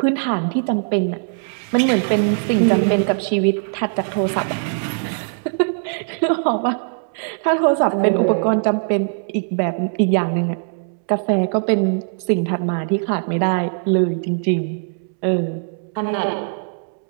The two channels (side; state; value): left; silent; 65 dB below the other